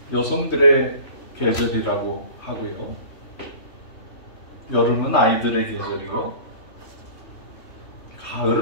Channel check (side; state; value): right; late; 3.2 ms